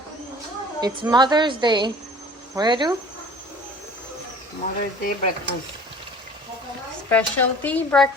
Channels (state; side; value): normal; both; correlation 0.46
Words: it's Mother's Day. What do? Mother's Day breakfast. Specialty